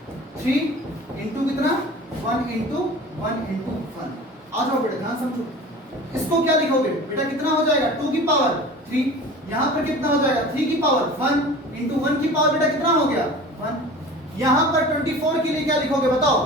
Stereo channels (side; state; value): both; normal; correlation 0.39